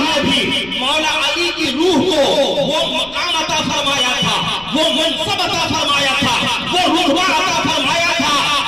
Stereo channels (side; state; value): left; noise; rumble, 23 dB below the sound